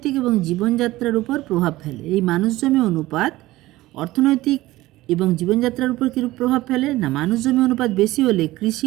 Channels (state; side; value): quieter; left; 17.5 dB